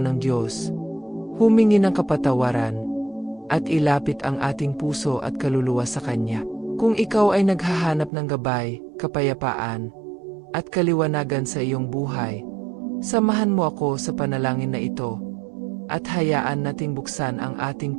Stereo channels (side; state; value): left; drops out; at 8.1 s